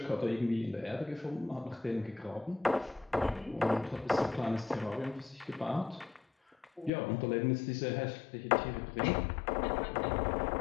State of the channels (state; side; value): drops out; right; at 6.9 s